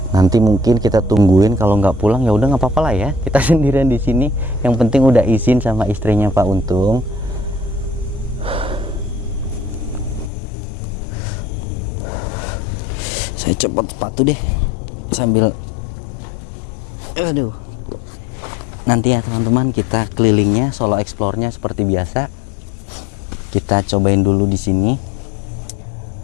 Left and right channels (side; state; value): right; drops out; at 10.3 s